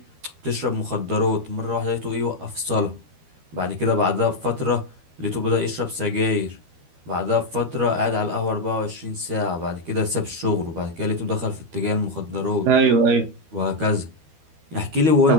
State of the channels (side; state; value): left; late; 13 ms